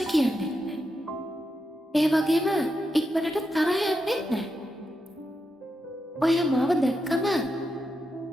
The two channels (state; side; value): normal; both; correlation 0.86